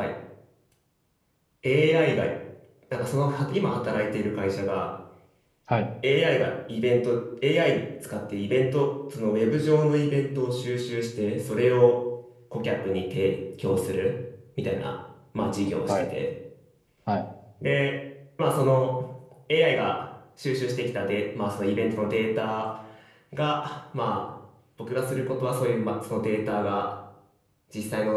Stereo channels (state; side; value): identical; both; correlation 1.00